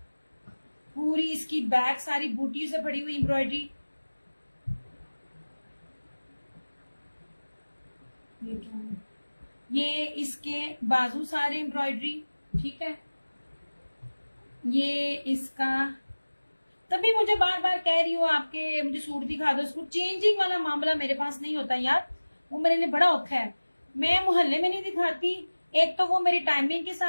पूरी इसकी बैक सारी बूटियों से भरी हुई एम्ब्रॉयडरी। ये इसके बाजू सारे एम्ब्रॉयडरी, ठीक है। ये इसका, तभी मुझे बार बार कह रही हूँ आपके मुझे सूट दिखा दो। सूट चेंजिंग वाला मामला मेरे पास नहीं होता यार, वो मेरे लिए बड़ा औखा है। मैं मोहल्ले में नहीं दिखाती, एक तो वो मेरी टाइमिंग के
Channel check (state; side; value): inverted; both; correlation -1.00